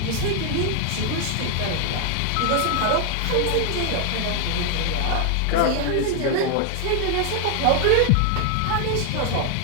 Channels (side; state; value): both; different; correlation 0.00